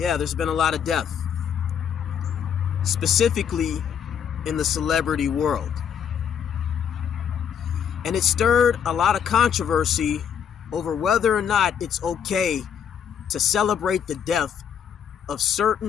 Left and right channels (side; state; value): right; quieter; 8.2 dB